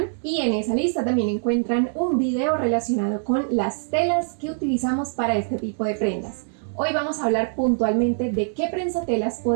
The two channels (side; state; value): left; silent; 63 dB below the other